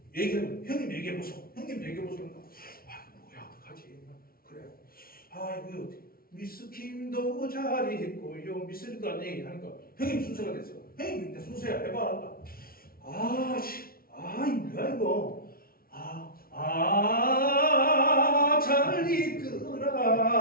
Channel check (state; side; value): late; right; 0.43 ms